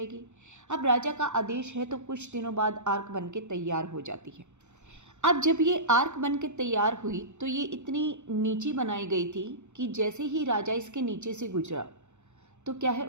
अब राजा का आदेश है तो कुछ दिनों बाद आर्क बन के तैयार हो जाती है। अब जब ये आर्क बन के तैयार हुई तो ये इतनी नीची बनाई गई थी कि जैसे ही राजा इसके नीचे से गुजरा तो क्या है,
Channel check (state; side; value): late; left; 0.83 ms